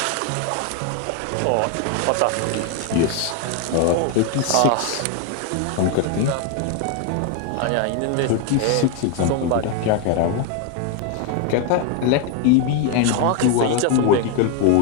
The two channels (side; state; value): both; different; correlation 0.01